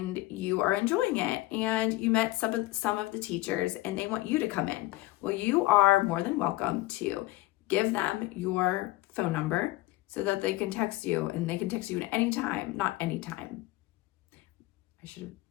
you are enjoying it, and you met some of the teachers and they want you to come in. Well, you are more than welcome to give them your phone number so that they can text you, and they can text you at any time, not any time.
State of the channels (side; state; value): right; quieter; 18.5 dB